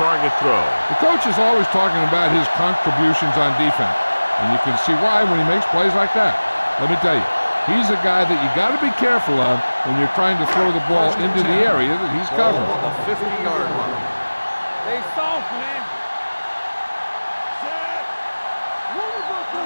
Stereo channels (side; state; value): both; inverted; correlation -1.00